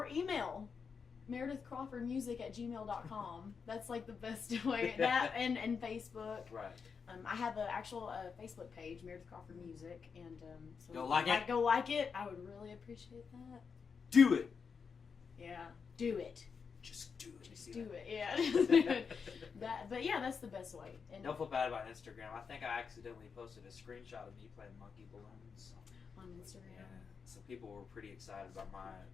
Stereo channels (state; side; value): quieter; right; 5.8 dB